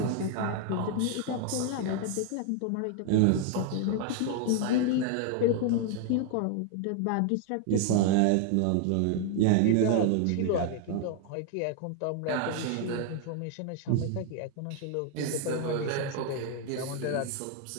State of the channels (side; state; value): both; different; correlation 0.00